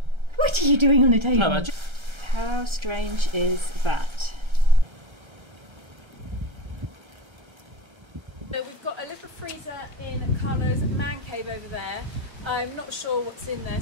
What are you doing on the table? No, ma... How strange is that? So we've got a little freezer in Carlo's man cave over there. I'm not sure what's in there,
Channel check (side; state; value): left; late; 1.3 ms